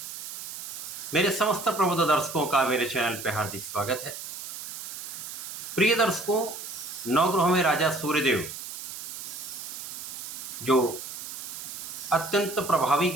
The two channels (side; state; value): right; noise; hiss, 9 dB below the sound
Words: मेरे समस्त प्रबुद्ध दर्शकों का मेरे चैनल पर हार्दिक स्वागत है। प्रिय दर्शकों, नवग्रहों में राजा सूर्यदेव जो अत्यंत प्रभावी